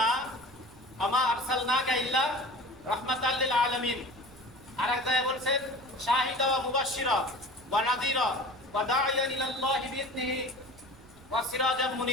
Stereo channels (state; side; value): noise; right; rumble, 23 dB below the sound